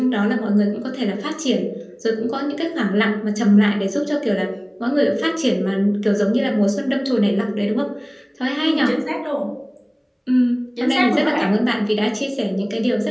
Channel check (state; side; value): identical; both; correlation 1.00